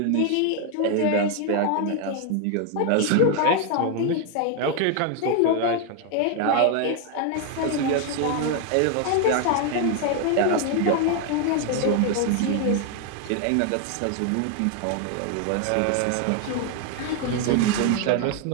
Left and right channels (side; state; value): both; different; correlation 0.01